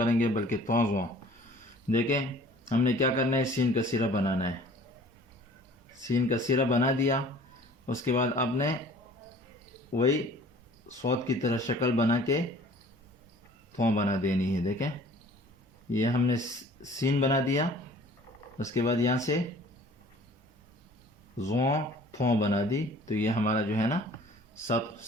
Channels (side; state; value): both; normal; correlation 0.50